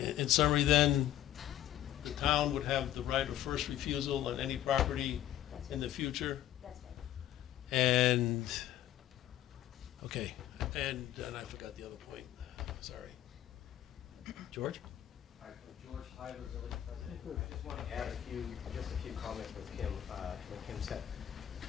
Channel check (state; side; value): quieter; right; 12.4 dB